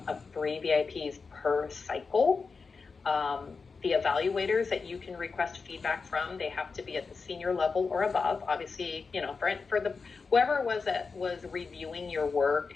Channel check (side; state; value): right; quieter; 4.7 dB